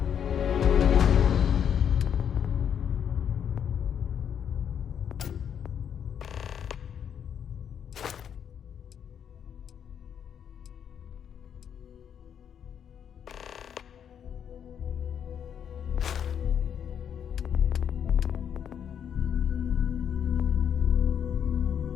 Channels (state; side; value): quieter; right; 8.4 dB